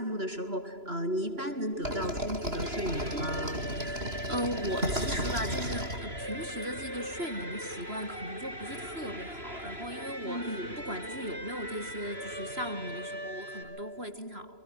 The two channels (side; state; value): left; late; 3.0 ms